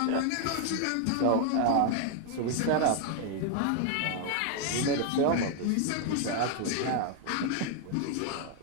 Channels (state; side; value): different; both; correlation 0.00